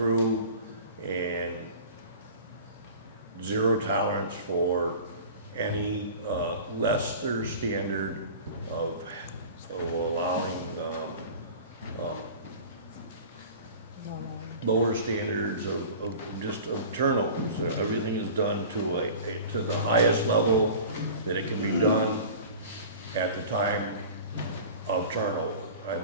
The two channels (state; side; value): inverted; both; correlation -0.39